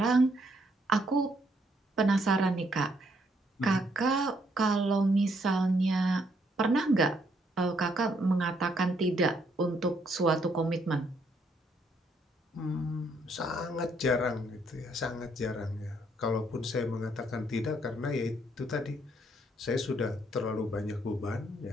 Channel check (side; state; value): both; normal; correlation 0.71